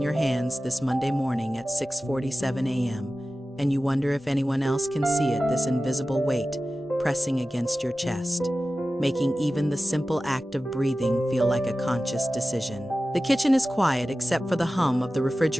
hands this Monday morning at 6:47 a.m., and you wonder if anyone else can see it, this invisible weight pressing against your chest, making even the simple act of breathing feel like a conscious decision. The kitchen is quiet except for the hum of the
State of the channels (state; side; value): normal; both; correlation 0.95